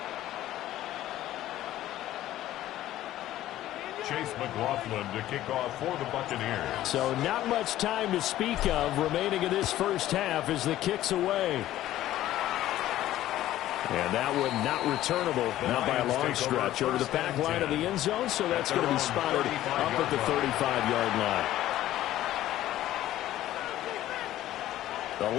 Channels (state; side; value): quieter; right; 14.0 dB